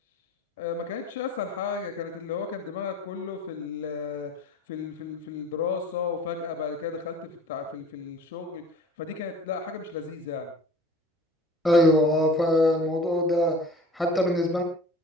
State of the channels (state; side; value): normal; both; correlation 0.45